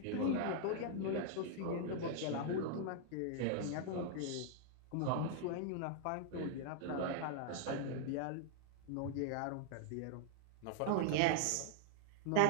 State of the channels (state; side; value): different; both; correlation -0.01